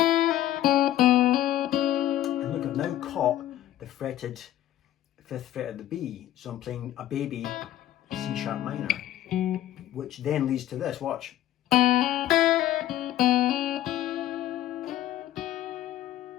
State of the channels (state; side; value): quieter; right; 13.1 dB